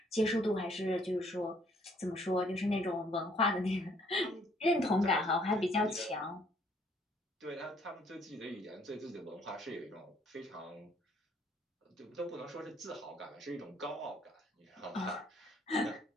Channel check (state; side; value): normal; both; correlation 0.64